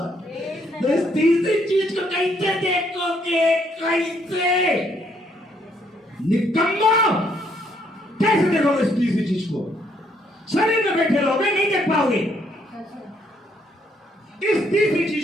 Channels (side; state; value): both; normal; correlation 0.70